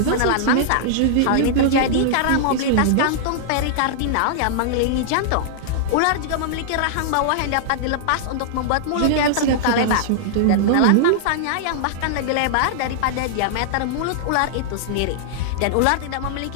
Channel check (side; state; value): both; different; correlation -0.01